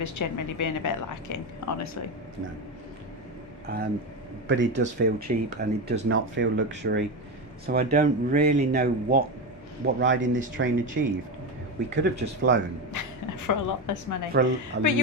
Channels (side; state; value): both; normal; correlation 0.16